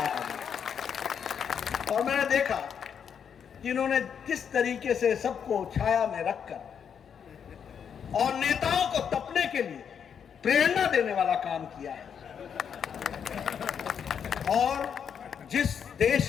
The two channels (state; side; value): quieter; right; 7.6 dB